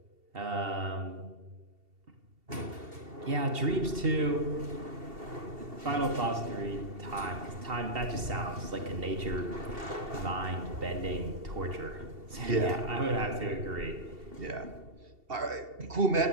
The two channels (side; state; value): left; late; 2.7 ms